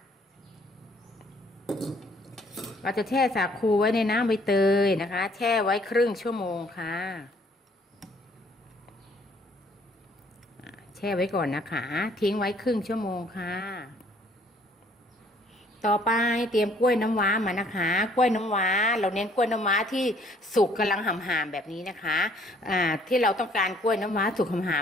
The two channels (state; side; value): normal; both; correlation 0.61